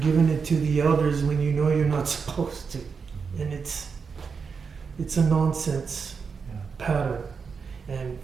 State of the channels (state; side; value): quieter; left; 5.6 dB